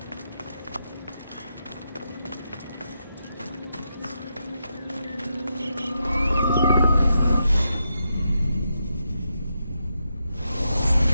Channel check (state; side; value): inverted; both; correlation -0.84